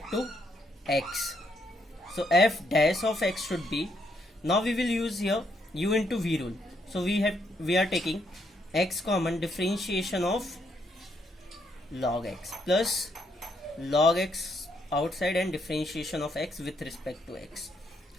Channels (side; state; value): both; normal; correlation 0.75